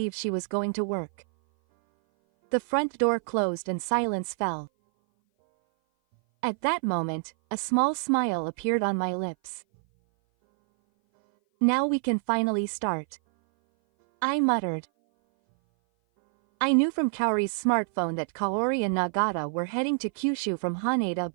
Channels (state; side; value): silent; left; 58 dB below the other